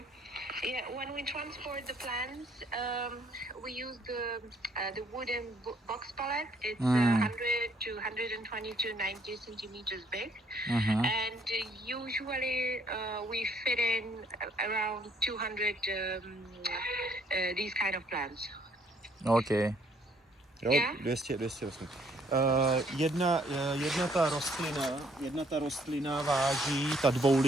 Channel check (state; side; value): normal; both; correlation 0.65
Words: Yeah, when we transport the plants, we use the wooden box pallet. It's 100 to 120 to 90 centimeters big, and usually we fit in around 200 these kind of plants. Okay. Jo, Yeah? 200 vlastně. Jedna ta rostlina váží, ta